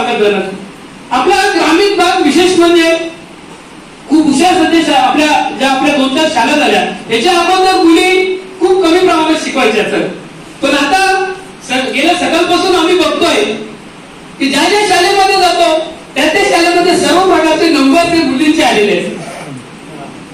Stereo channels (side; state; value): both; identical; correlation 1.00